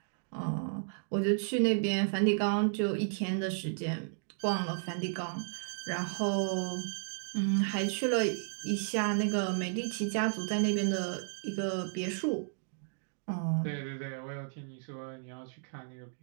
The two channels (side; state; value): left; silent; digital silence